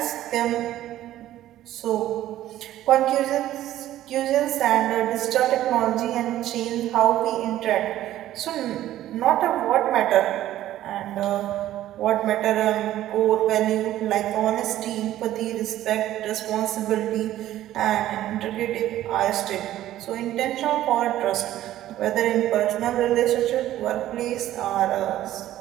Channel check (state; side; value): quieter; left; 13.5 dB